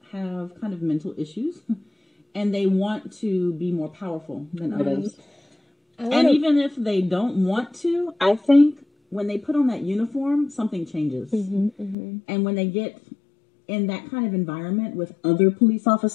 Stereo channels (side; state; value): right; drops out; at 12.0 s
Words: have kind of mental issues and they want to be more powerful than others. And even if they don't want to, I think when they put on that uniform, something changes. And when they get in that kind of environment with other police